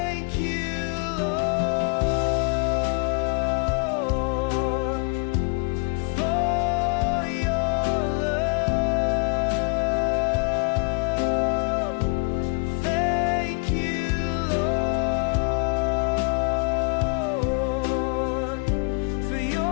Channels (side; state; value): right; quieter; 36.6 dB